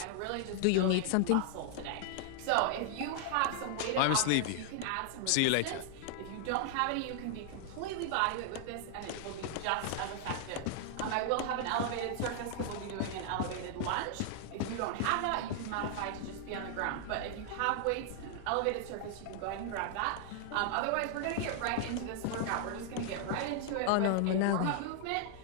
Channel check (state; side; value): different; both; correlation 0.00